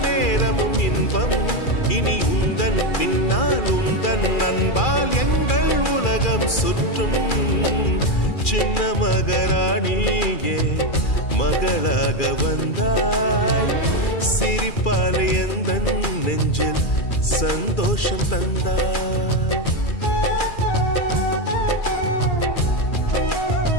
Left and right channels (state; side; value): late; right; 2.4 ms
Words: நேரமும் இன்பம், இனி உந்தன் பின்னால் உந்தன் நண்பால் எங்கள் உலகம் சுற்றும். சின்ன மகாராணியே மகளாக வந்தாய், சிரிப்பால் எந்த நெஞ்சில் சந்தோஷம் தந்தாய்.